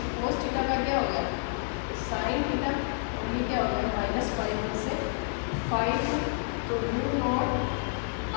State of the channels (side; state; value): right; silent; digital silence